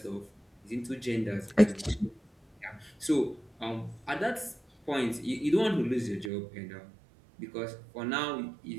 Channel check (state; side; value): drops out; left; at 6.3 s